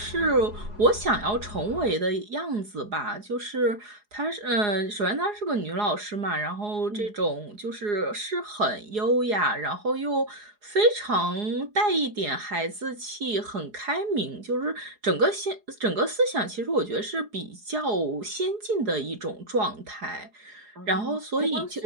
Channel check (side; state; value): left; late; 4.8 ms